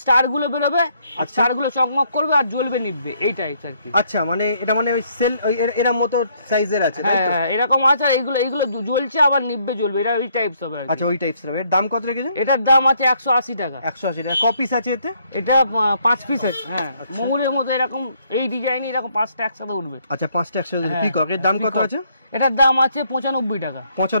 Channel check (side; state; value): both; inverted; correlation -0.69